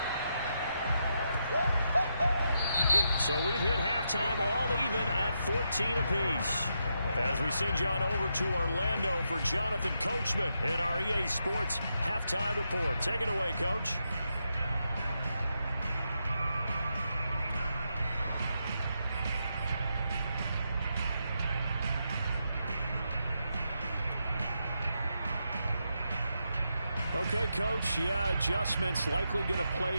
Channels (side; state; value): both; inverted; correlation -0.83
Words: So we've hit halftime all even at 14 apiece. As we send you on over to Orlando for Jonathan Coachman in our EA Sports Halftime Report. Take it away, Coach. Okay, Coach, yeah, adjustments likely going to